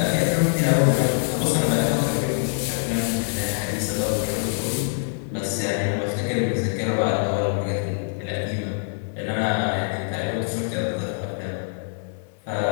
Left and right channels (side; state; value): right; silent; digital silence